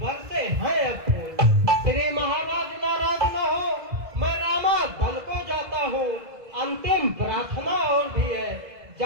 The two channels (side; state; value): left; late; 2.0 ms